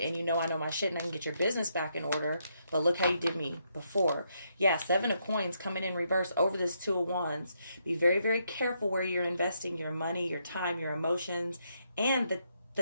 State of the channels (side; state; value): both; inverted; correlation -0.77